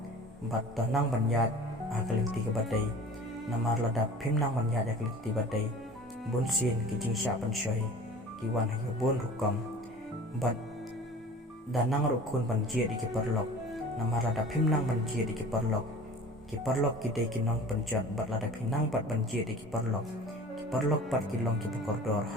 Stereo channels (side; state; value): both; normal; correlation 0.42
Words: bat tonang banyat akalinti ke badai namar lada pimnang banyat akalinti badai bunsin kijing syapan syoy kiwan hayo bun rukam bat danang rukun banjir iki perlok namar lada pimnang banjir iki perlok kidai kinong penjat bat lada pinang bat banjir iki perlok bat kilong ki pekordor